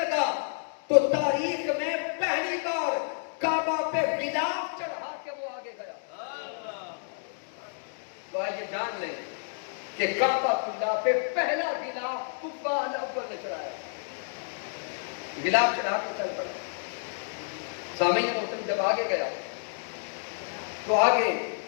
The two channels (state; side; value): silent; right; digital silence